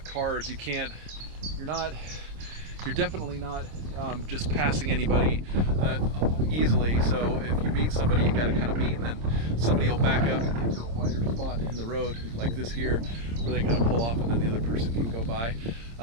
cars, you're definitely not just passing anybody easily. So if you meet somebody, you got to kind of meet, and then somebody will back up and get to a wider spot in the road like this here, where they kind of pull off and then the other person can go by.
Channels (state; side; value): late; left; 26 ms